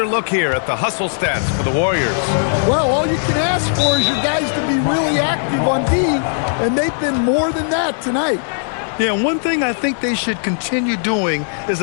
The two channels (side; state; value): right; silent; digital silence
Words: look here at the hustle stats for the Warriors. Well, all you can ask for is your guys to be really active on D, and they've been more than that tonight. Yeah, one thing I think they should continue doing is